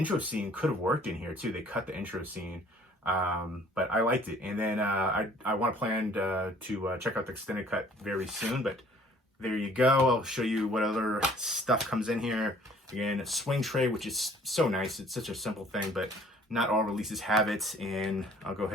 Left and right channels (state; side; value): normal; both; correlation 0.56